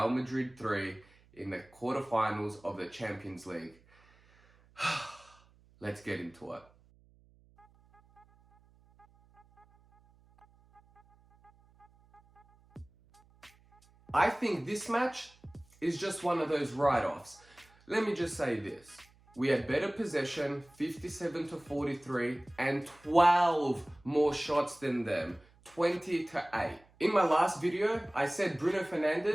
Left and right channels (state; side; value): noise; right; hum, 29 dB below the sound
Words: Madrid 3 in the quarterfinals of the Champions League. Let's get into it. I think this match is just one of those write-offs. Let me just say this. We had better possession, 57-43, and 12 more shots than them, 20-8. In my last video, I said Bruno